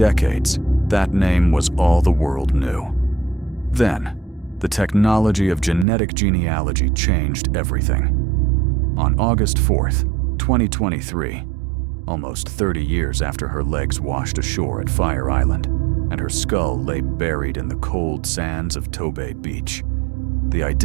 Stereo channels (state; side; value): drops out; left; at 5.9 s